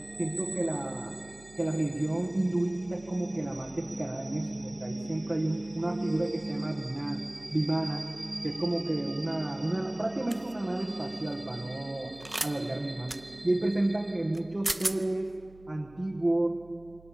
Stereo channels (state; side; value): noise; right; hum, 23 dB below the sound